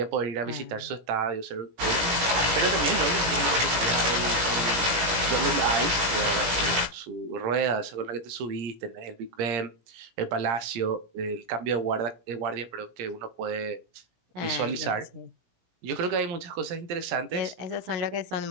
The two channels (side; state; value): left; late; 17 ms